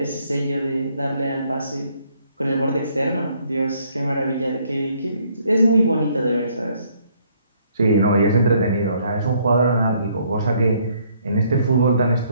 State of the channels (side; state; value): both; inverted; correlation -0.66